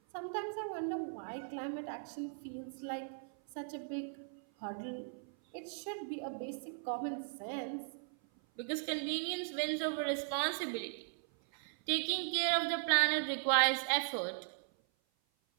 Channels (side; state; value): left; silent; 52 dB below the other